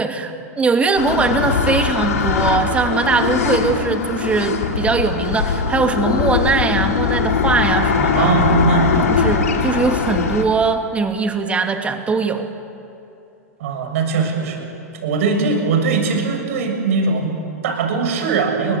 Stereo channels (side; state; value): both; normal; correlation 0.10